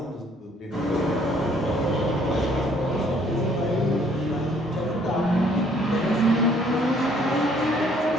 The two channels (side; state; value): both; normal; correlation 0.62